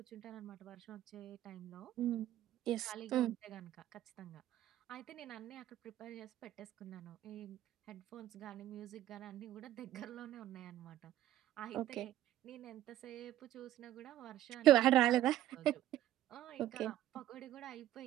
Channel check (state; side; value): quieter; left; 13.3 dB